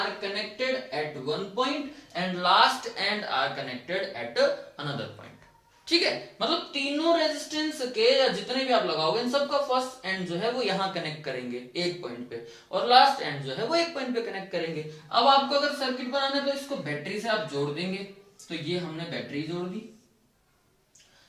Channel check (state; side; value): identical; both; correlation 1.00